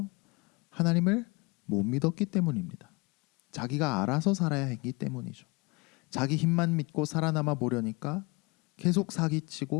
하나님을 못 믿었기 때문입니다. 자기가 알아서 살아야 했기 때문이죠. 자기 힘만 믿고 살아남아 보려니까 계속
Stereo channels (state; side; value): quieter; right; 27.3 dB